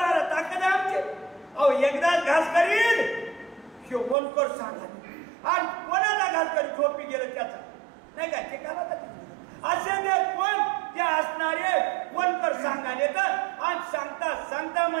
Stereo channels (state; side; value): drops out; left; at 4.2 s